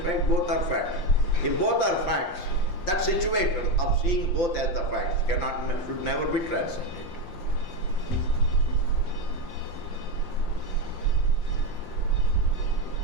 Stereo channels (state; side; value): late; right; 5.7 ms